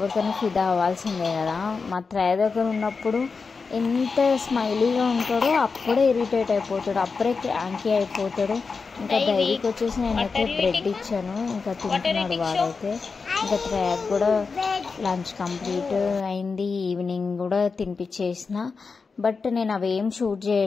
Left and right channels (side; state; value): right; quieter; 4.8 dB